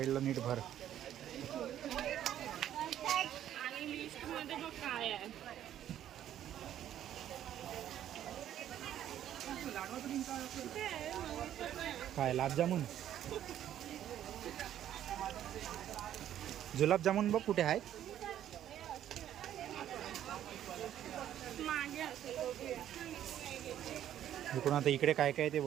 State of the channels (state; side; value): quieter; left; 11.2 dB